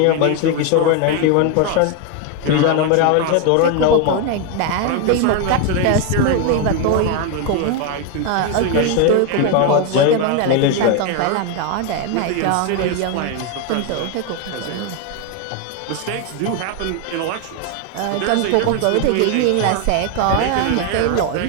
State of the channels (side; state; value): both; different; correlation 0.01